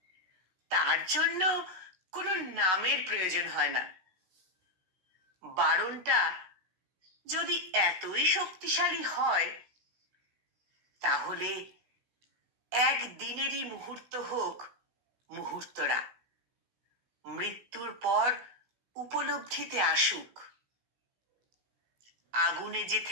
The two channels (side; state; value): left; late; 16 ms